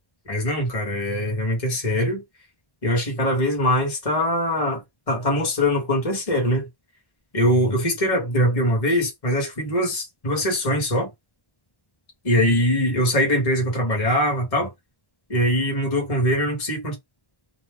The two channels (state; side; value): late; right; 1.1 ms